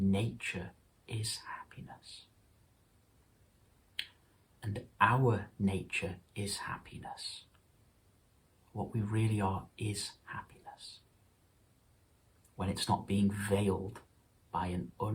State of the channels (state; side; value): identical; both; correlation 1.00